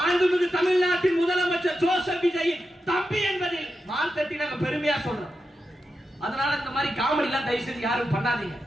தமிழ்நாட்டின் முதலமைச்சர் ஜோசப் விஜய் தம்பி என்பதில் மார்த்தட்டி நாங்க பெருமையா சொல்றோம். அதனால இந்த மாதிரி காமெடி எல்லாம் தயவு செஞ்சு யாரும் பண்ணாதீங்க.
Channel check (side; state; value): both; normal; correlation 0.89